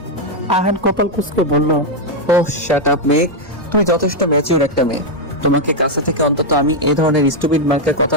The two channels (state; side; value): normal; both; correlation 0.01